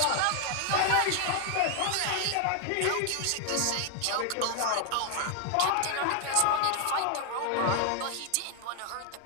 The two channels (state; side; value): different; both; correlation 0.00